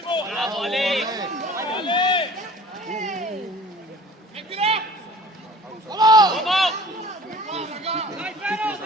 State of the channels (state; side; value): normal; both; correlation 0.46